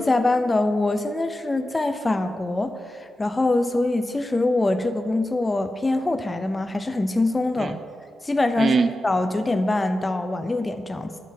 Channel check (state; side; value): normal; both; correlation 0.93